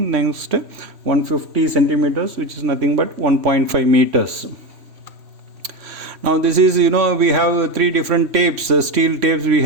Next 150 centimeters, which is nothing but 1.5 meters. Now this is, we have 3 different tapes, steel tapes. We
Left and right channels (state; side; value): late; left; 3.1 ms